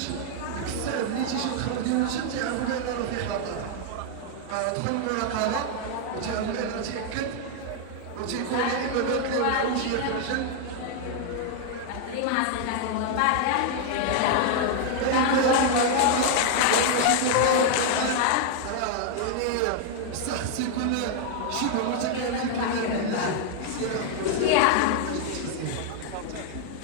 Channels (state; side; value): different; both; correlation 0.00